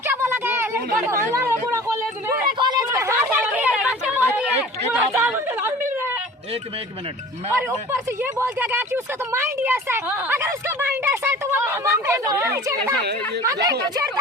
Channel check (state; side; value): normal; both; correlation 0.42